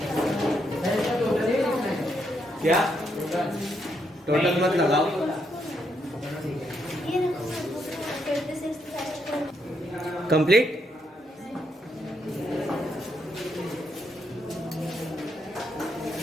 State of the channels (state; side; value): normal; both; correlation 0.77